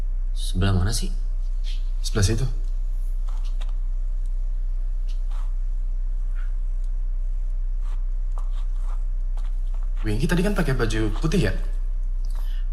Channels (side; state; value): both; identical; correlation 1.00